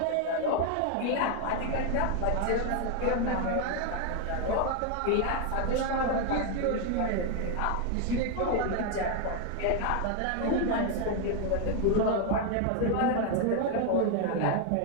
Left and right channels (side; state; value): both; different; correlation 0.00